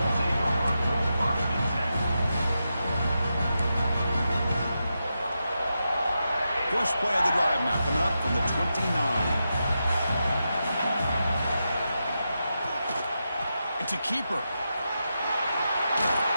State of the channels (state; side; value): inverted; both; correlation -0.88